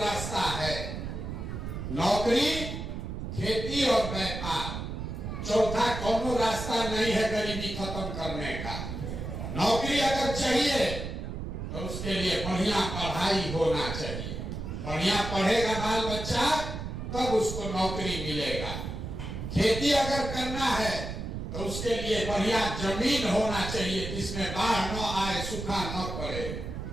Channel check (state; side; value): noise; right; rumble, 6 dB below the sound